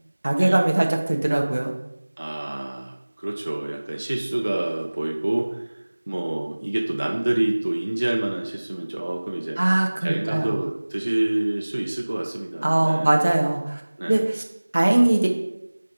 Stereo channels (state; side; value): inverted; both; correlation -1.00